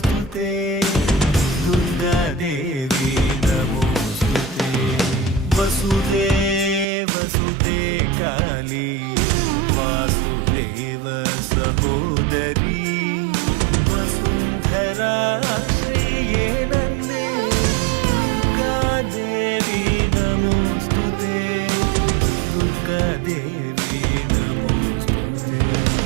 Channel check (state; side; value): drops out; left; at 6.9 s